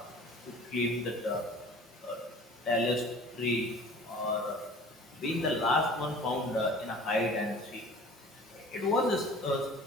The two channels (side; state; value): both; normal; correlation 0.46